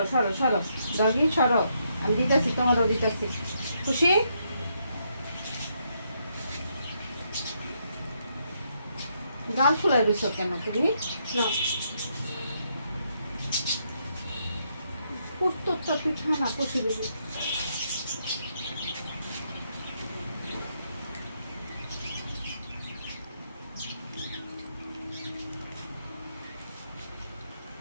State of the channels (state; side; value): inverted; both; correlation -0.77